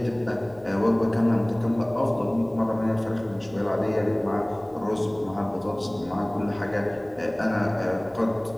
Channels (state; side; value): noise; right; rumble, 26 dB below the sound